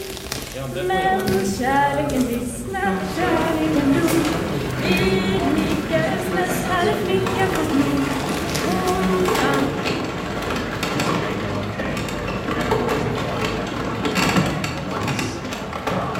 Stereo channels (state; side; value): identical; both; correlation 1.00